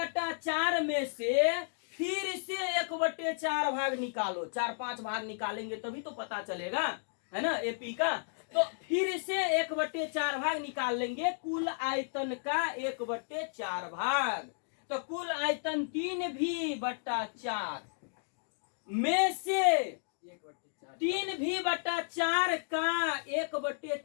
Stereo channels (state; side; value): silent; right; digital silence